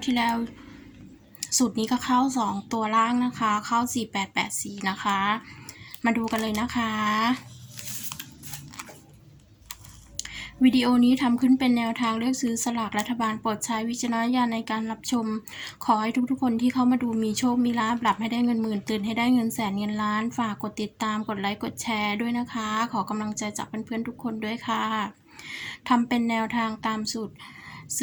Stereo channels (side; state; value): both; identical; correlation 1.00